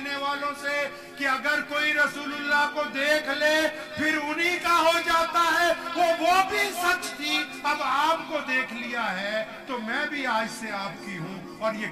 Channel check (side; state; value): both; identical; correlation 1.00